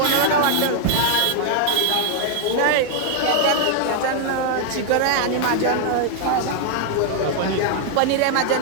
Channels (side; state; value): both; different; correlation 0.00